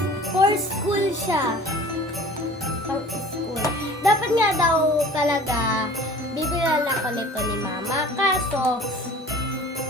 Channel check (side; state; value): both; normal; correlation 0.45